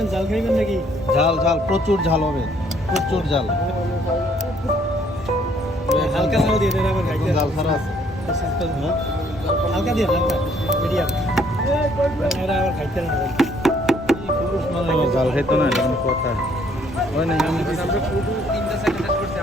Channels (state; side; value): normal; both; correlation 0.64